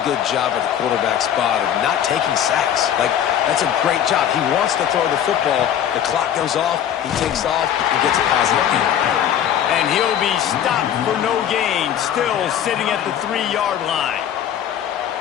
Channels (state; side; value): quieter; right; 9.9 dB